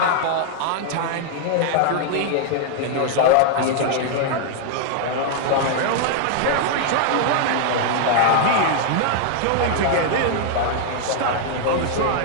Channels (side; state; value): both; different; correlation 0.00